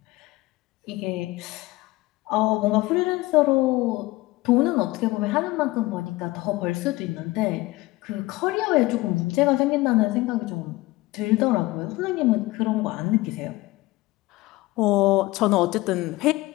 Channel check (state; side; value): quieter; right; 20.0 dB